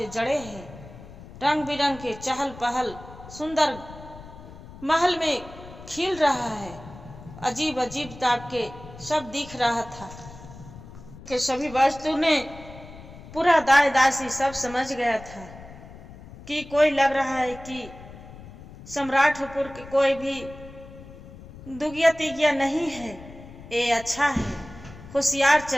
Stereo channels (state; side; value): noise; left; rumble, 17 dB below the sound